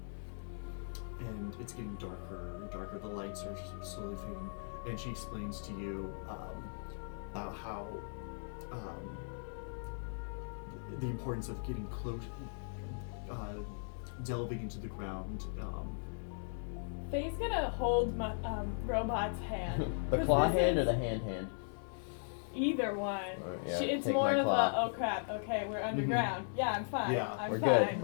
And it's getting darker and darker. The lights are slowly fading. And she explains to you about how the importance of getting close, delving into the ground. Faye's gonna hold my robot's hand. The 'Cause claw this hand or is- the hand hand? Either one. Yeah, It's take more my of claw. a, oh crap, okay, we're underground. Yeah, I'm fine. Yeah, I'm we're fine. good,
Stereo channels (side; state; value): right; silent; digital silence